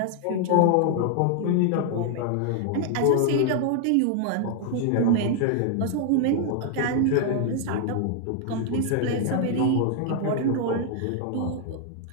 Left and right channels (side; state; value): both; different; correlation 0.00